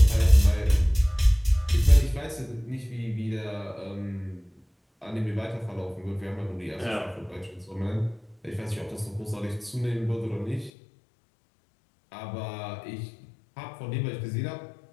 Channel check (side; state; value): right; drops out; at 10.7 s